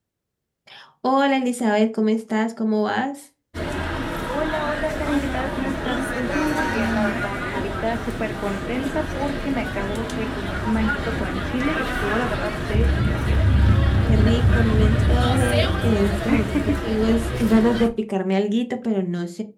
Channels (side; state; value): both; identical; correlation 1.00